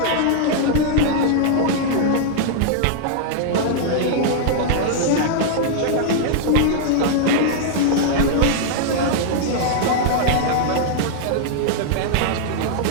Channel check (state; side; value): different; both; correlation -0.01